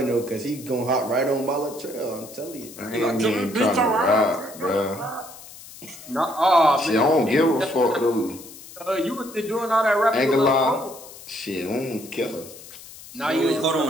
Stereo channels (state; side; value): noise; left; hiss, 17 dB below the sound